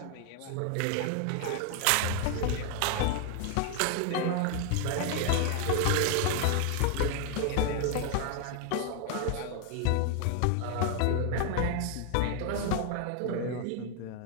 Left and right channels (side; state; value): both; different; correlation 0.00